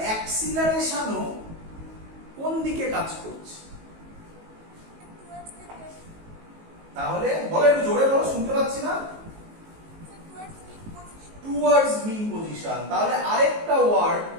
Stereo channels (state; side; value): late; left; 19 ms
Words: অ্যাক্সিলারেশনও কোন দিকে কাজ করছে? তাহলে বলো একটু জোরে বলো, শুনতে পাচ্ছি না। Towards mean position. তাহলে আরেকটা ওয়ার্ড